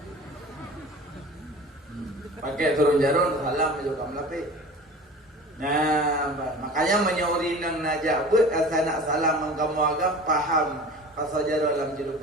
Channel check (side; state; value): both; normal; correlation 0.39